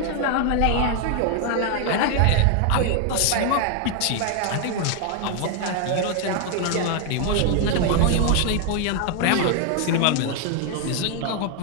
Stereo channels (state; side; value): different; both; correlation 0.00